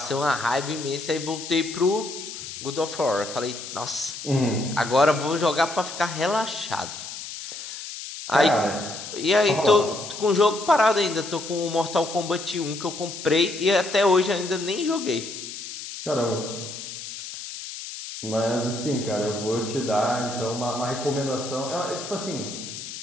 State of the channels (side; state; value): left; noise; hiss, 10 dB below the sound